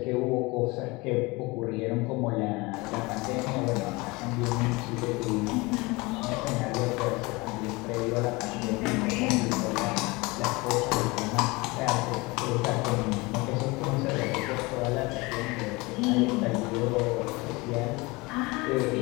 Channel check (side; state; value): right; quieter; 24.3 dB